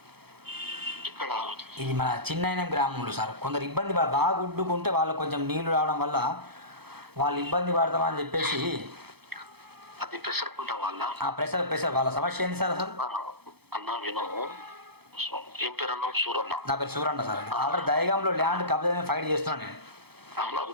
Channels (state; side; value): late; left; 0.96 ms